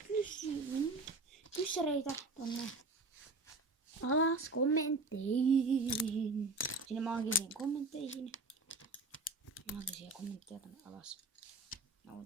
kyssäreitä tonne alas kommentteihin. Sinne maagisiin kommentteihin. Maagisia kommentteja tonne alas. Mä voin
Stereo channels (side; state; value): left; quieter; 3.3 dB